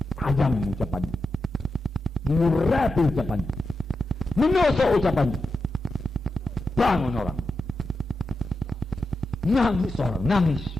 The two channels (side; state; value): both; normal; correlation 0.89